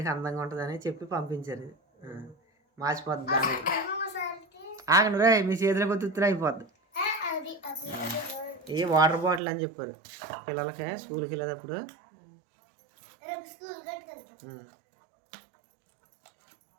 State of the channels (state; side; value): drops out; left; at 9.4 s